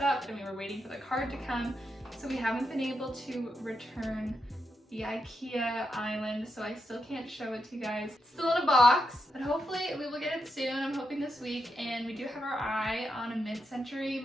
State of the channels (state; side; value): normal; both; correlation 0.84